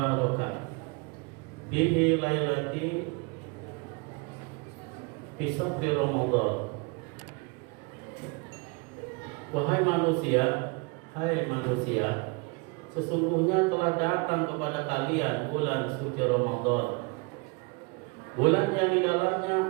bihi lailati fi sahri Ramadan. Wahai manusia, hai manusia, sesungguhnya telah datang kepada kalian bulan suci Ramadan, bulan yang di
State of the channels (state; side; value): quieter; left; 29.6 dB